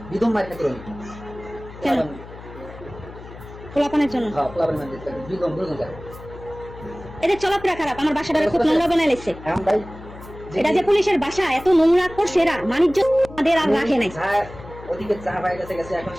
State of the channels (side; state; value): left; noise; hum, 16 dB below the sound